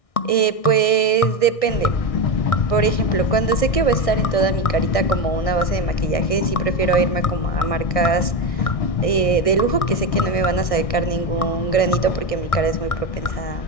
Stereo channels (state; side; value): late; right; 1.6 ms